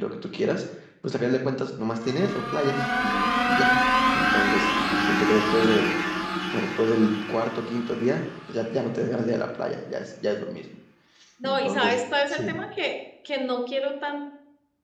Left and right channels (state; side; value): identical; both; correlation 1.00